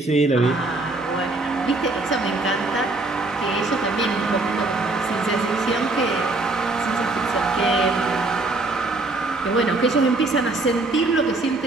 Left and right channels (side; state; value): left; quieter; 3.1 dB